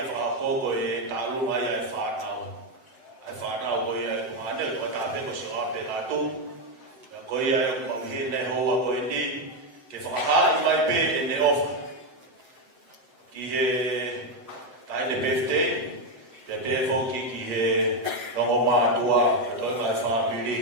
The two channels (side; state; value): left; late; 7.8 ms